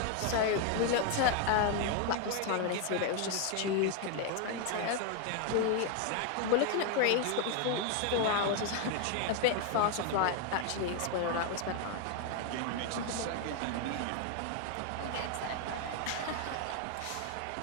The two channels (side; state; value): both; different; correlation 0.01